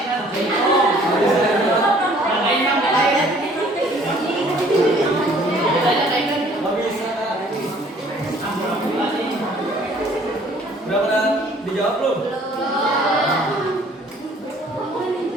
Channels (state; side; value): normal; both; correlation 0.56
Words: Nggak bisa, Kak. Udah pernah dijawab belum?